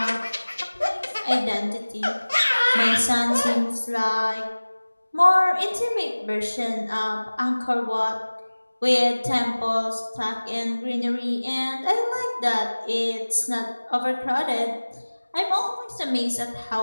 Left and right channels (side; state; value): both; inverted; correlation -1.00